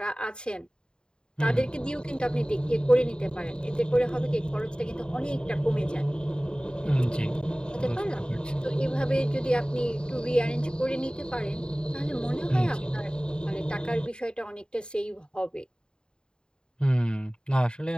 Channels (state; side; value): late; right; 0.049 ms